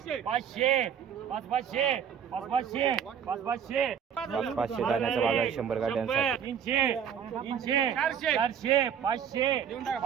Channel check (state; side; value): quieter; left; 8.2 dB